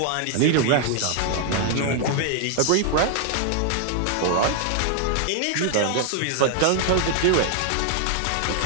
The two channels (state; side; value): different; both; correlation 0.00